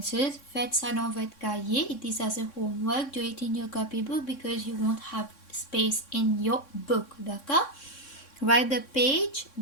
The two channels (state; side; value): late; right; 3.6 ms